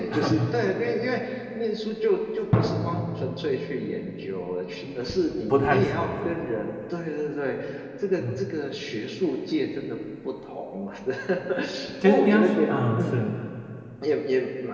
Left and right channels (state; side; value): identical; both; correlation 1.00